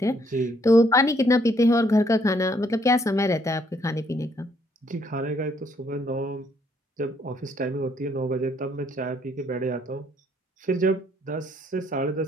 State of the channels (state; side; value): normal; both; correlation 0.68